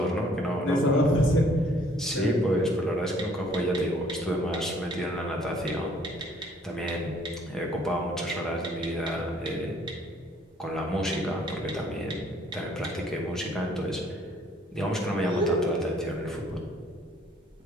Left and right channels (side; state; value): both; normal; correlation 0.60